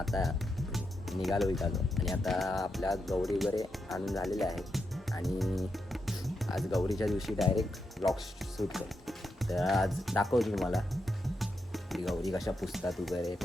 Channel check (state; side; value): normal; both; correlation 0.85